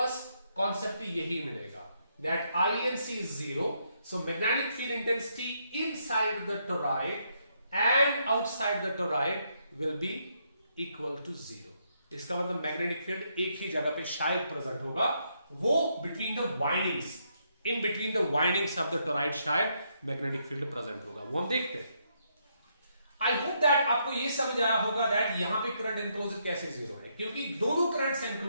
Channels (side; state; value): both; inverted; correlation -0.76